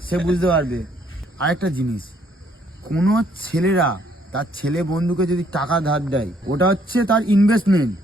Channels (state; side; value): normal; both; correlation 0.67